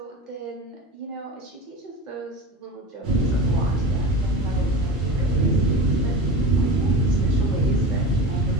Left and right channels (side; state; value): both; normal; correlation 0.30